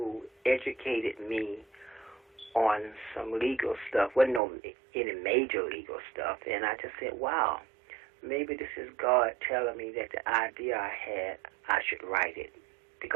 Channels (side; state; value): left; drops out; at 4.4 s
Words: educated me on some legal stuff. Wasn't any major legal stuff. And I just said, wow, maybe this is God telling me that the idea I had, I should write it.